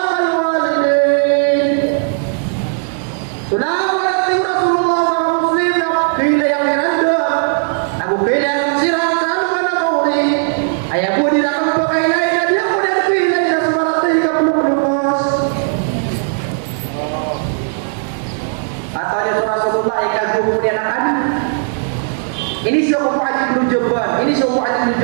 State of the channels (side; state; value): left; silent; digital silence